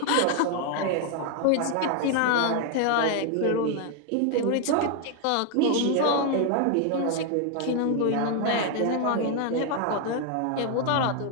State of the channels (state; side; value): different; both; correlation 0.01